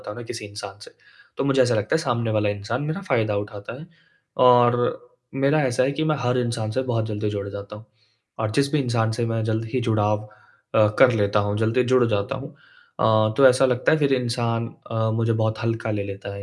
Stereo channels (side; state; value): both; identical; correlation 1.00